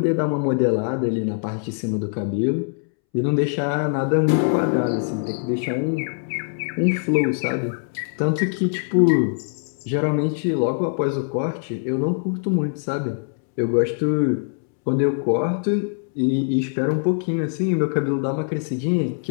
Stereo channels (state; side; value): silent; right; 64 dB below the other